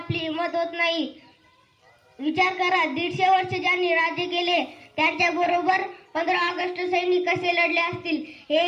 हिंमत होत नाही. विचार करा, 150 वर्ष ज्यांनी राज्य केले त्यांच्या बरोबर 15 ऑगस्ट सैनिक कसे लढले असतील.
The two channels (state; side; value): identical; both; correlation 1.00